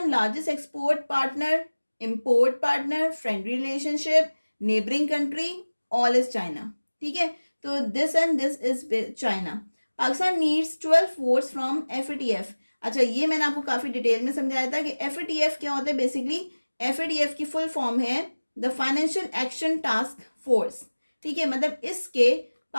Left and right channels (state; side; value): inverted; both; correlation -1.00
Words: largest export partner, import partner, friendly relationship, neighbouring country, all is China, ठीक है। तो this and this is China. Pakistan needs 12 votes from FATF। अच्छा, ये मैंने आपको काफ़ी डिटेल में समझाया था कि FATF क्या होता है। बेसिकली FATF की फुल फॉर्म है the financial action task force, ठीक है। मतलब इसके